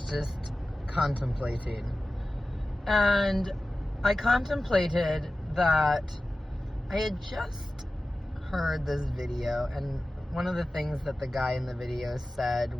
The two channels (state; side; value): normal; both; correlation 0.95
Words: just contemplating, and I contemplated that I had just heard this video, and one of the things that the guy in the video said